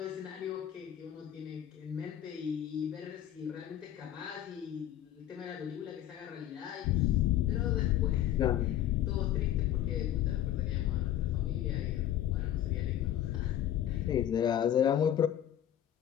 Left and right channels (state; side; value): quieter; right; 11.6 dB